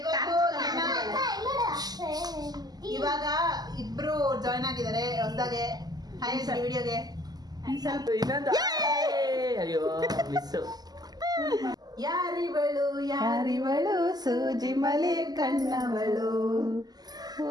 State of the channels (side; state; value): left; late; 0.19 ms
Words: ಇವಾಗ ಇಬ್ರು ಜಾಯ್ನ್ ಆಗಿದ್ದಾರೆ ಹೊಸದಾಗೆ. ಹಾಯ್ ಸರ್ ವಿಡಿಯೋಗೆ ಸ್ವಲ್ಪ ಇನ್ನೊಂದು ಅಯ್ಯೋ ಮಿಸ್. ಯಾರಿವಳು ಯಾರಿವಳು ಸೂಜಿ ಮಲೆ ಕಣ್ಣವಳು.